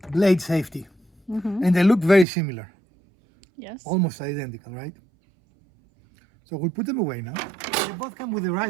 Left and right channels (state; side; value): drops out; left; at 2.2 s